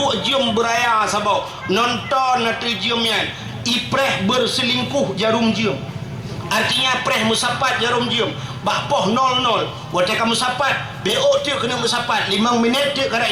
jom beraya sabau nonton nanti jomnya ipreh berselingkuh jarum jom artinya preh musapat jarum jom bak poh 00 wate kamu sapat BO tu kena musapat 5 minit tu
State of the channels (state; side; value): identical; both; correlation 1.00